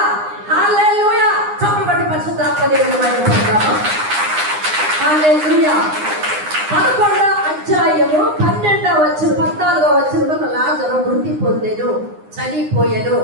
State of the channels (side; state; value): left; late; 9.7 ms